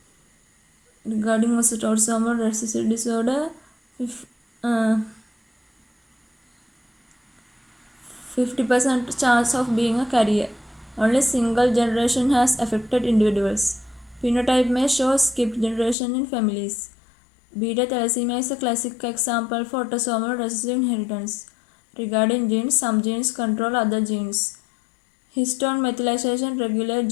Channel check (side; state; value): right; drops out; at 16.0 s